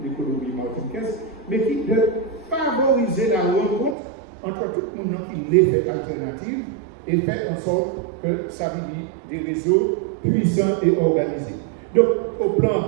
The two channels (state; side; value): drops out; left; at 4.0 s